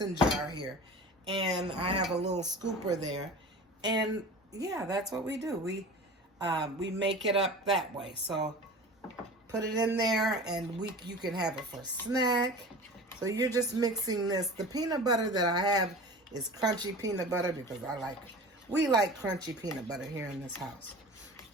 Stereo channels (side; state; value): both; normal; correlation 0.36